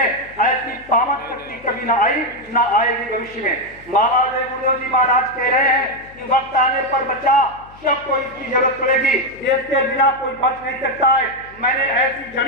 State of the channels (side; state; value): left; noise; hum, 24 dB below the sound